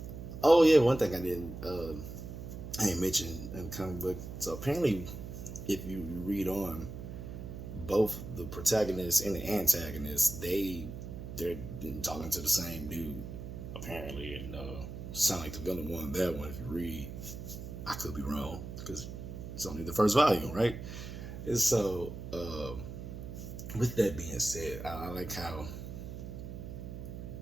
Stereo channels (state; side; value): noise; right; hum, 9 dB below the sound